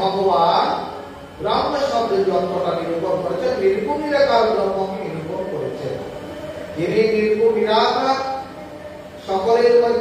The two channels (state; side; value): identical; both; correlation 1.00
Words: ব্রহ্ম শব্দের যন্ত্রটা নিরূপণ করেছেন, নির্গুণ নিরাকার ব্রহ্মকে নিরূপণ করেছেন। যিনি নির্গুণ নিরাকার, সকলের